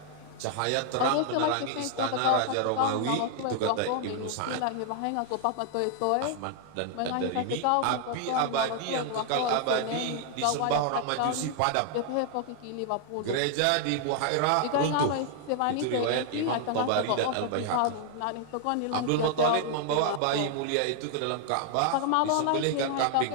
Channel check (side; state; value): both; different; correlation 0.00